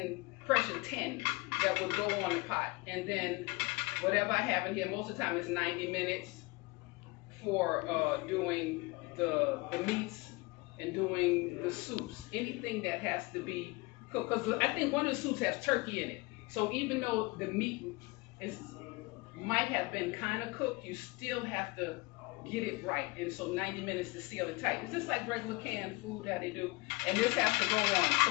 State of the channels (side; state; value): right; quieter; 24.9 dB